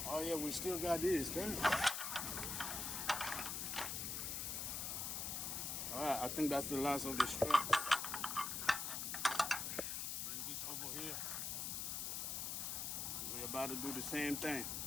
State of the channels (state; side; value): noise; left; hiss, 2 dB below the sound